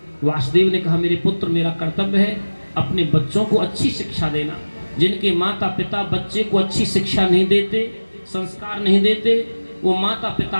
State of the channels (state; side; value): inverted; both; correlation -1.00